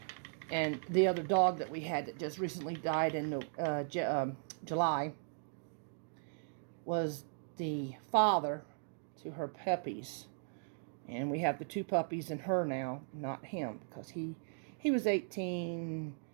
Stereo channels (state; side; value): silent; left; digital silence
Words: And the other dog that we had that just recently died in July was the father to her puppies. And we have the 2 puppies and her now, not him, because he was 18.